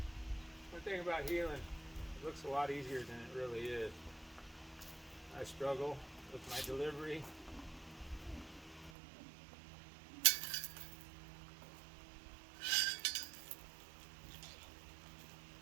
One thing about heeling, it looks a lot easier than it really is. I struggle with my delivery.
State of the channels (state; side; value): drops out; left; at 8.9 s